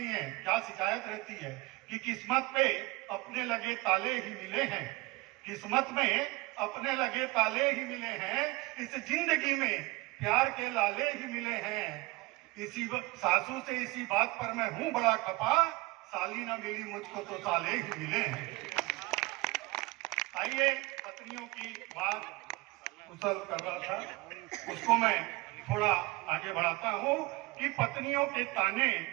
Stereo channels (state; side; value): quieter; left; 23.3 dB